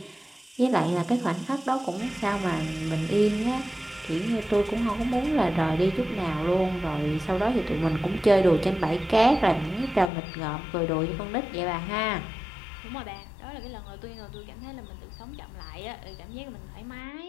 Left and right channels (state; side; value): drops out; right; at 10.1 s